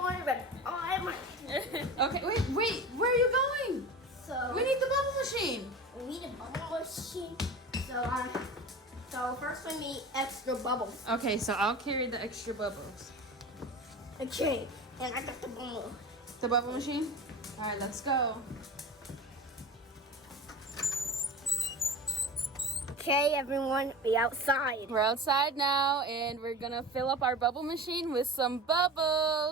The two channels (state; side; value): normal; both; correlation 0.33